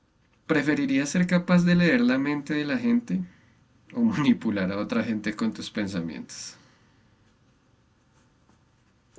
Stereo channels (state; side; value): identical; both; correlation 1.00